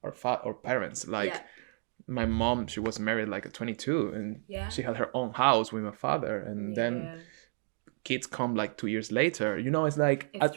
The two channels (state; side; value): silent; left; digital silence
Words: our parents. Like my mom, she was married like at 22, and she had her own house with my father, and then kids come like 2 years later. You know, it's like at